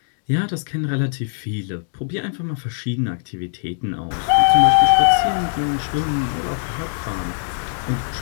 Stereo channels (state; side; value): silent; right; digital silence